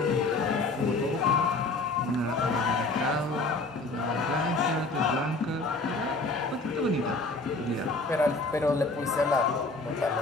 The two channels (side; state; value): right; quieter; 3.3 dB